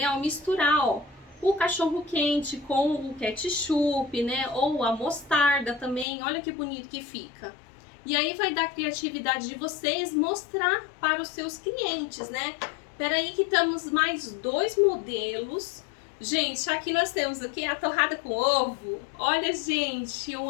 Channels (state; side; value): drops out; right; at 6.1 s